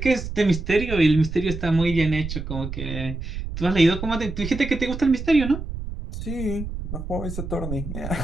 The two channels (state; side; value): noise; right; rumble, 7 dB below the sound